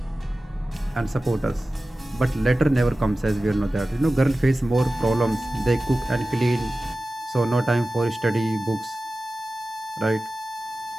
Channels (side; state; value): both; normal; correlation 0.95